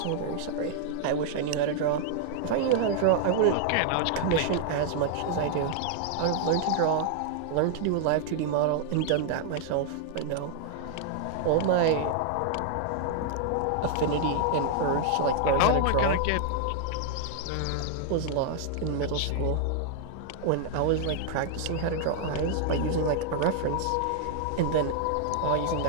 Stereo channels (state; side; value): different; both; correlation 0.00